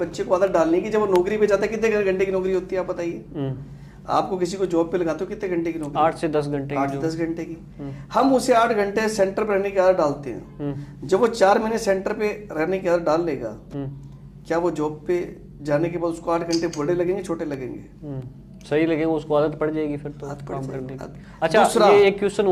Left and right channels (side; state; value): both; identical; correlation 1.00